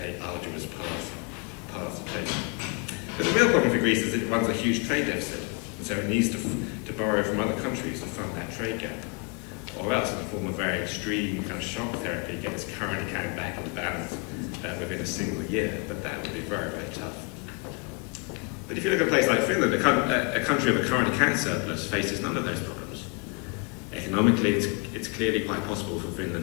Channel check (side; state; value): right; quieter; 32.9 dB